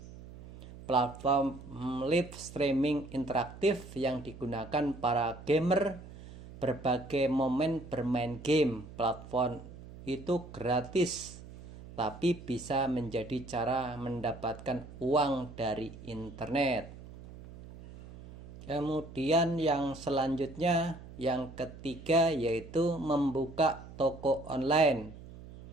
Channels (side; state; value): right; noise; hum, 16 dB below the sound